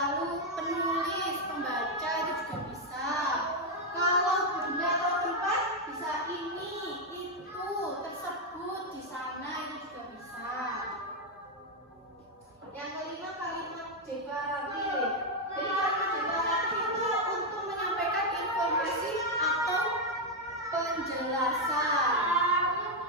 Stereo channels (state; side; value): normal; both; correlation 0.02